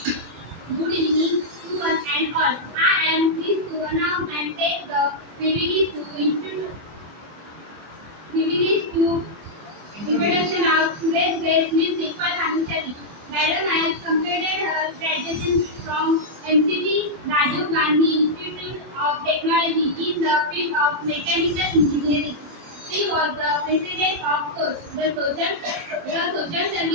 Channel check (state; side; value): late; left; 24 ms